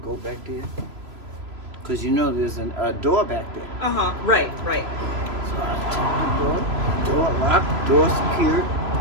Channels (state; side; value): late; left; 3.0 ms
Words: go back there. Because there's a door back there. Right. So I checked the door locked, door secured.